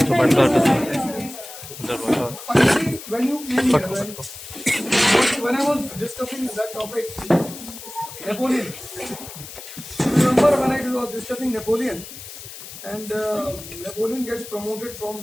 ಬಡ್ಡ When you came here, when I was discussing that topic, Napoleon. Remember when I was discussing Napoleon, and Napoleon gets promoted from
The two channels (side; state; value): left; noise; hiss, 13 dB below the sound